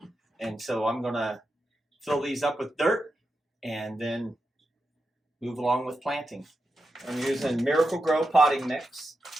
and so I'm gonna fill these up with dirt and then move along with planting. I'm using Miracle Grow potting mix,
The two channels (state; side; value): normal; both; correlation 0.88